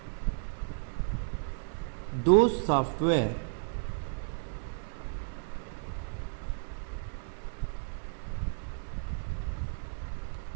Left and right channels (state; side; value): silent; left; 56 dB below the other